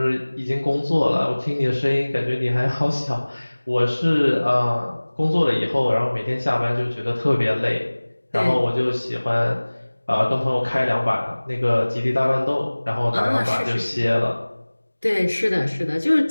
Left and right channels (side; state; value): both; inverted; correlation -1.00